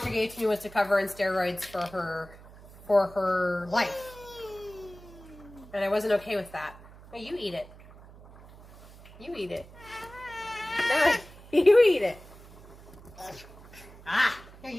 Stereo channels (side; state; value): right; noise; hum, 20 dB below the sound